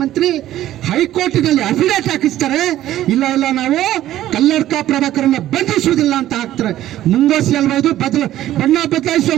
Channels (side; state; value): left; quieter; 13.4 dB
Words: ಹೈಕೋರ್ಟಿನಲ್ಲಿ ಅಫಿಡೇಟ್ ಹಾಕಿಸ್ತಾರೆ, ಇಲ್ಲ ಇಲ್ಲ ನಾವು ಕಲ್ಲಡ್ಕ ಪ್ರಭಾಕರನ್ನ ಬಂಧಿಸುವುದಿಲ್ಲ ಅಂತ ಹಾಕ್ತಾರೆ. ಮುಂಗೋಸಿ ಅಲ್ವಾ ಇದು? ಬಣ್ಣ ಬದಲಾಯಿಸುವ